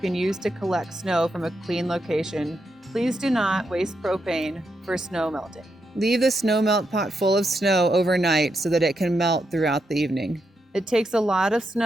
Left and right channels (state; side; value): normal; both; correlation 0.83